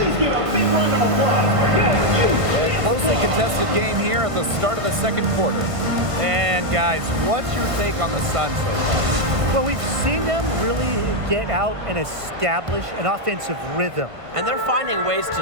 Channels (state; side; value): late; left; 1.5 ms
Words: give a big round of applause for your A closely contested game here at the start of the second quarter. And guys, what's your take on the Sun so far? Well, we've seen them really get out and establish an offensive rhythm. And they're finding ways